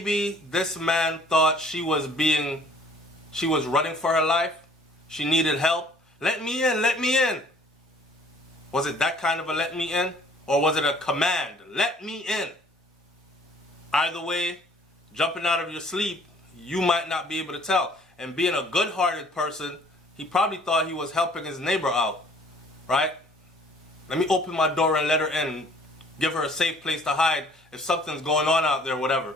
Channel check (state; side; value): normal; both; correlation 0.56